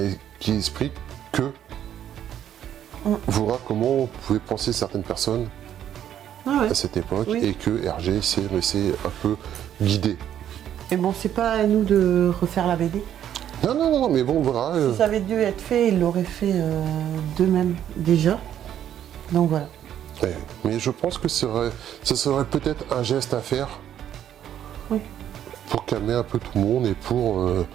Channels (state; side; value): quieter; left; 10.4 dB